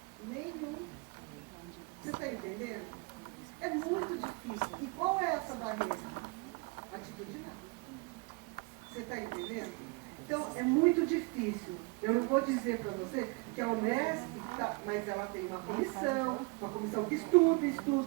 Nenhum. Você está entendendo? É muito difícil. E qual é essa barreira? Atitudinal. Você está entendendo? Então, é muito difícil. Eu não vou dizer para você que a Unesp, mas ela tem uma comissão que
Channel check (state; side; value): quieter; left; 27.9 dB